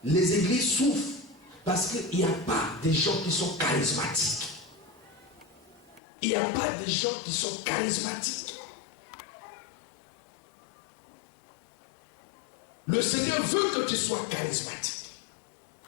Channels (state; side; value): drops out; right; at 6.0 s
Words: Les églises souffrent. Parce qu'il n'y a pas des gens qui sont charismatiques. Il n'y a pas des gens qui sont charismatiques. Le Seigneur veut que tu sois charismatique.